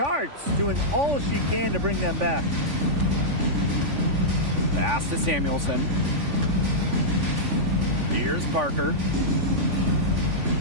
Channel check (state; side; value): late; left; 3.5 ms